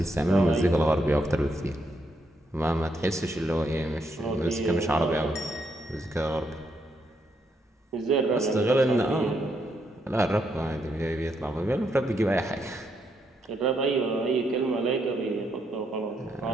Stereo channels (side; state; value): both; normal; correlation 0.77